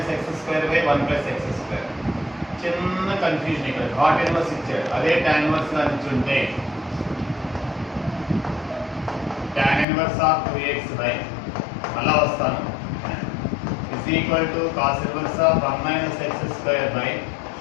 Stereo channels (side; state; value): right; drops out; at 9.9 s